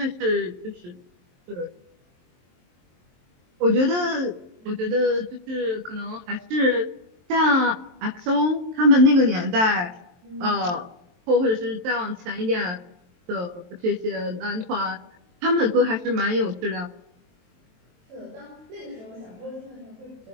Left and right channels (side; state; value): left; late; 23 ms